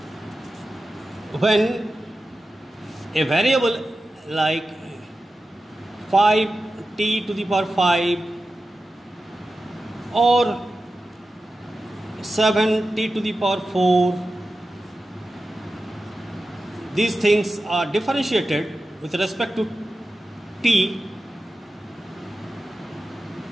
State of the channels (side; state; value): both; normal; correlation 0.93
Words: when a variable like 5t to the power 5 or 7t to the power 4, these things are differentiated with respect to t,